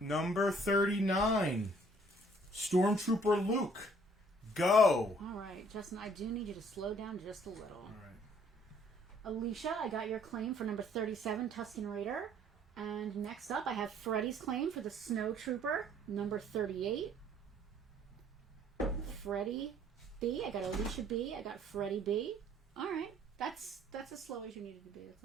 39, Stormtrooper Luke, go. All right, Justin, I do need you to slow down just a little. All right. Alicia, I got your claim for number 37, Tusken Raider. And next up, I have Freddie's claim for the Snow Trooper, number 38. Freddie B. I got Alicia B. I got Freddie B. All right. That's as slow as you needed to be. That's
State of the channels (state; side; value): normal; both; correlation 0.60